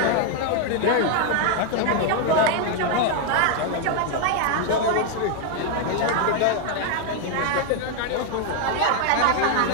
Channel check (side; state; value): both; different; correlation 0.01